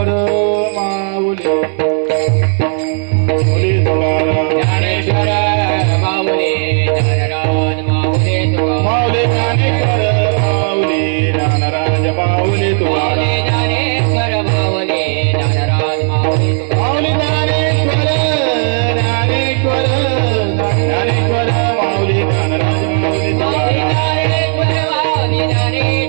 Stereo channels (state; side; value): silent; left; digital silence